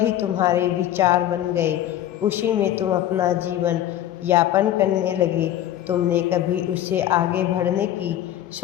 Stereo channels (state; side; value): quieter; right; 12.2 dB